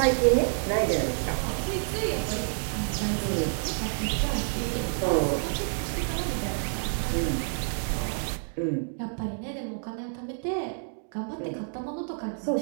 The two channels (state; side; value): silent; left; digital silence